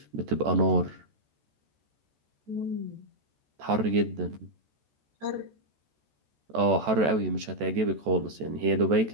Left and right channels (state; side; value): late; left; 14 ms